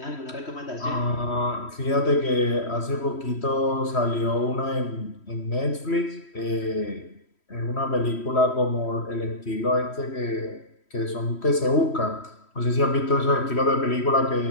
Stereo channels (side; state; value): right; late; 3.1 ms